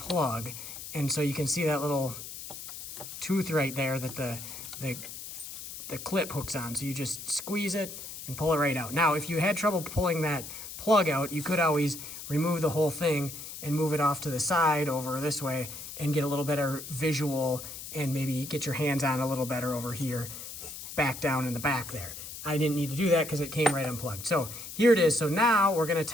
And so you can see that little tooth right there that the clip hooks on. So you just squeeze it and pull it right out. Now, if you had trouble pulling that plug out, you could always remove the whole thing and move it off to the side over this way and get a little better visual and maybe get your hands on a little better over here, back down in the back there. I didn't need to do that because it came right unplugged. So here it is. So now we're gonna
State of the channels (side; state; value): left; noise; hiss, 10 dB below the sound